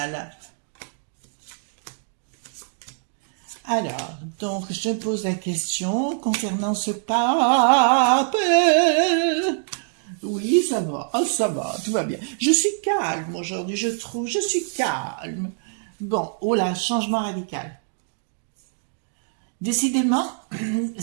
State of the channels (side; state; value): left; silent; 62 dB below the other